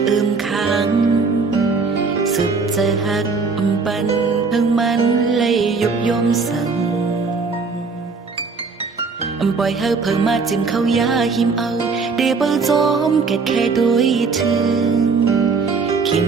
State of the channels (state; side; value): quieter; left; 4.6 dB